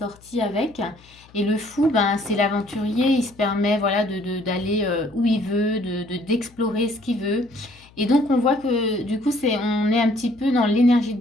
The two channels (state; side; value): noise; left; hum, 26 dB below the sound